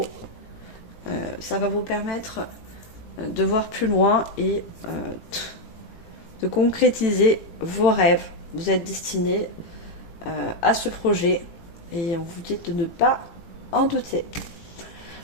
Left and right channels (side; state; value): right; late; 18 ms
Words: ça va vous permettre de voir plus loin et de concrétiser vos rêves. Vous êtes destiné à ce projet et on vous dit de ne pas en douter.